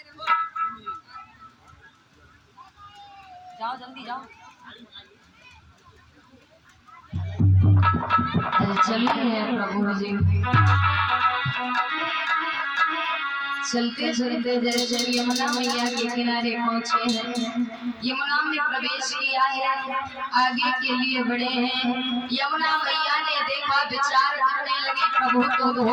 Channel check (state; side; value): identical; both; correlation 1.00